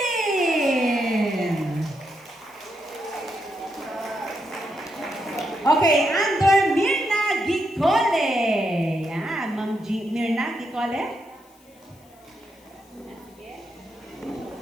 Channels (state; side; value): noise; left; hiss, 29 dB below the sound